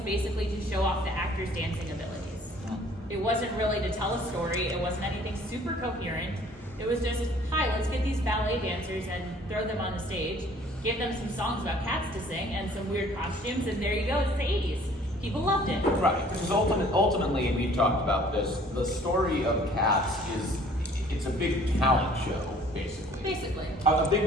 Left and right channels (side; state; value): both; normal; correlation 0.55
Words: to show off the actors' dancing abilities. It wasn't really to tell a story, it wasn't anything super coherent. It was just, hi, let's get these ballet dancers and throw them on the stage, give them some songs about cats to sing and some weird costumes, and there you go, it's the 80s. People loved it. Right, because ultimately, and we've talked about this, the story of Cats is, it's a big talent show, basically. Basically. A